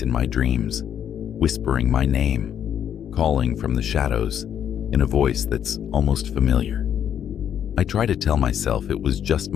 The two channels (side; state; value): right; quieter; 9.2 dB